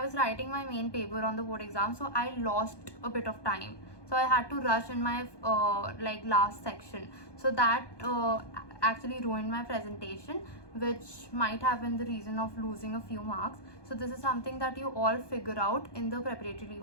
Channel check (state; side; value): late; right; 1.2 ms